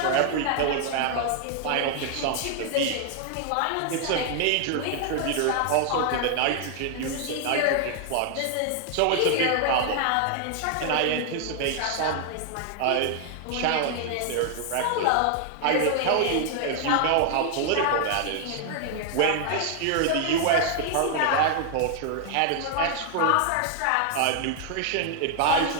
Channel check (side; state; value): both; different; correlation 0.00